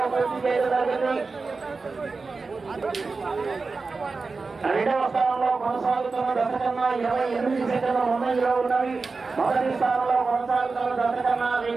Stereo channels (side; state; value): left; quieter; 4.2 dB